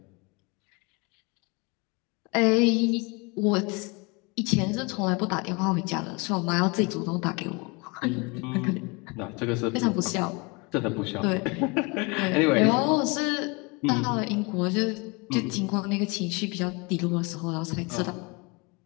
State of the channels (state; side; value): quieter; right; 28.2 dB